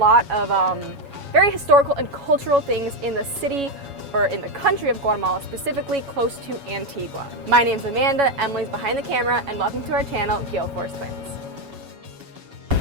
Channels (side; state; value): left; late; 7.2 ms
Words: of very historical and cultural things in the city or in the country of Guatemala, specifically close to Antigua. My name's Amanda, Emily's behind the camera, and welcome to our channel, Gale Force Twins.